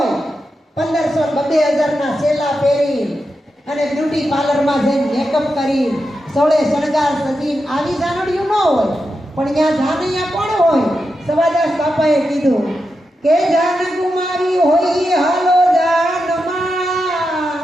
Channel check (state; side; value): normal; both; correlation 0.88